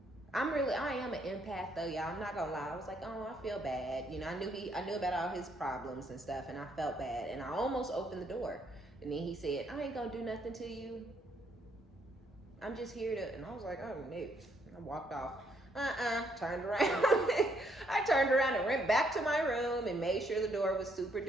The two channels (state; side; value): normal; both; correlation 0.71